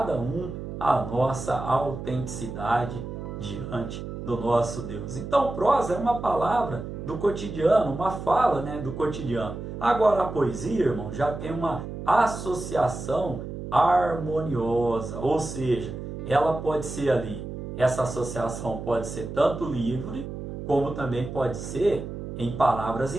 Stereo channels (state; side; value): noise; right; hum, 8 dB below the sound